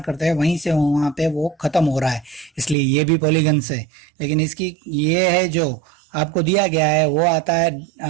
करते हैं वहीं से वहां पे वो खत्म हो रहा है, इसलिए ये भी पॉलीगन से। लेकिन इसकी ये है जो आपको दिया गया है वो आता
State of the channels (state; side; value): drops out; left; at 2.8 s